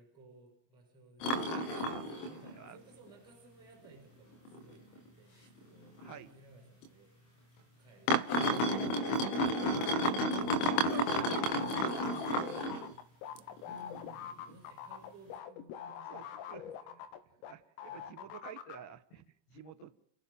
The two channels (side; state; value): right; late; 25 ms